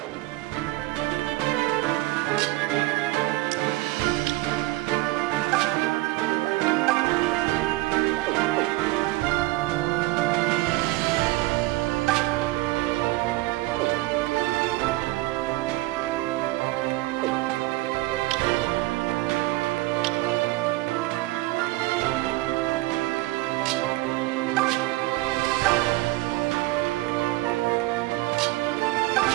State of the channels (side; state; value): left; quieter; 20.2 dB